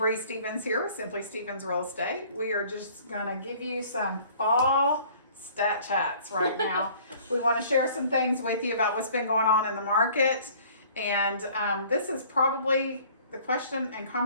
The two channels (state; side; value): inverted; both; correlation -0.53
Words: Stevens here with Simply Stevens Real Estate. We are just going to give you some fall stat chats right now. We want to share some things with you about what's been going on in the market. And this is probably the question and